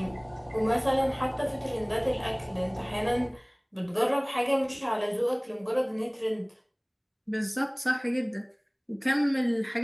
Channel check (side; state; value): both; identical; correlation 1.00